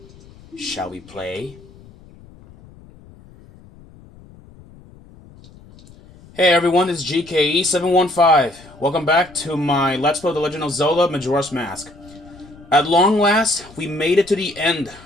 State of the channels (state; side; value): noise; left; rumble, 23 dB below the sound